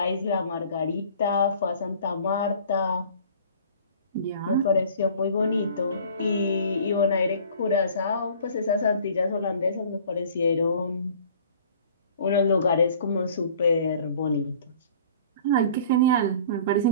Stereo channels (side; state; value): both; inverted; correlation -0.49